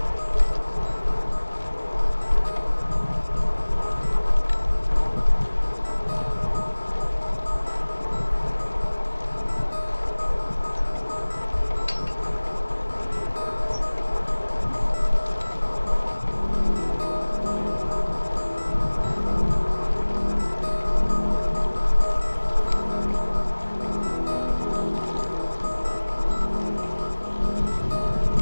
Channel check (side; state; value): both; inverted; correlation -1.00